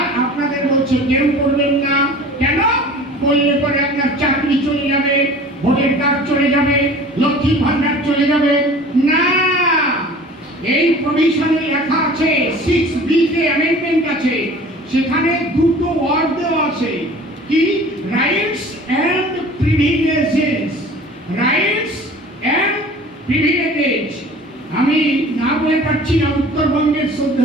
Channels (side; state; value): both; normal; correlation 0.44